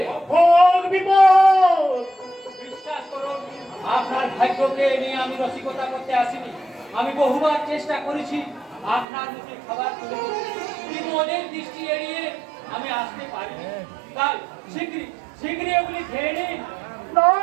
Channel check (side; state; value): left; drops out; at 9.1 s